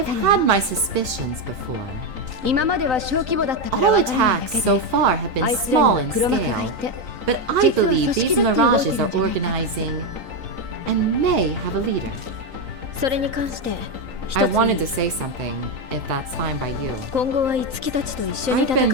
had my suspicions before. All attacks so far have been small in scale, but I believe these Mirages are organizing and may have a leader. I wanted to say something, if that's fine by you. I've been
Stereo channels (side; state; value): left; late; 3.9 ms